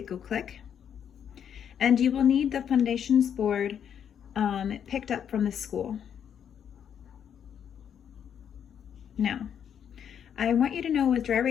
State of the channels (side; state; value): right; quieter; 8.6 dB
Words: go click. And you will need the Fundations board picked up from the school. Now, I want you to know with dry